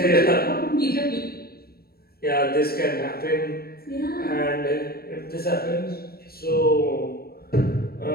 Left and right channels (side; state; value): right; late; 0.45 ms